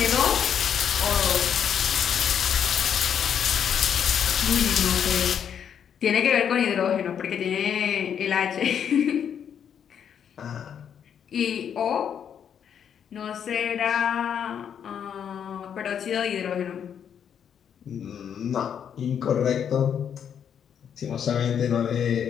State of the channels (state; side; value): quieter; right; 8.3 dB